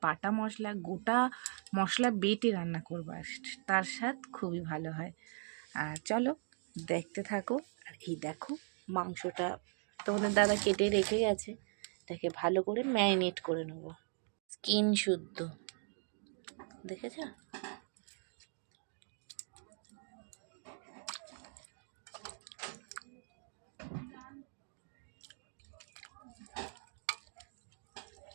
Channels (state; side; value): silent; left; 52 dB below the other